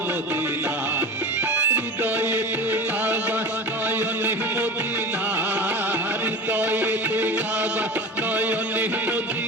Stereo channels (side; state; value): both; normal; correlation 0.32